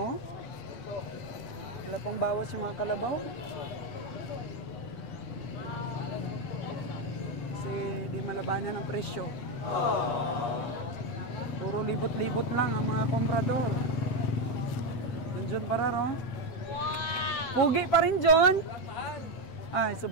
Wala pang bawas yung mga kalabaw. Kasi di malabanan ang presyo. Puro libot-libot lang ang mga komprador. John Pararo. Pugi pa rin, John. Ay,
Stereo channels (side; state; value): right; late; 8.3 ms